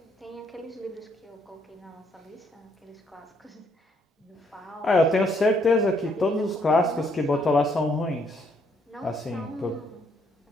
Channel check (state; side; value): normal; both; correlation 0.70